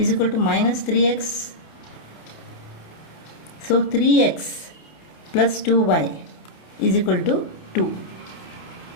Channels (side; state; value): right; late; 29 ms